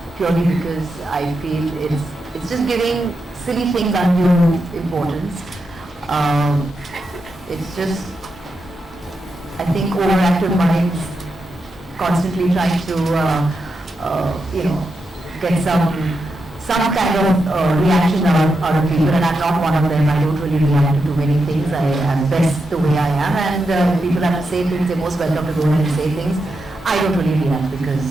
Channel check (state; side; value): normal; both; correlation 0.86